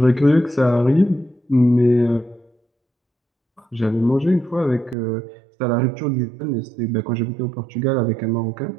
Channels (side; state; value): left; drops out; at 5.0 s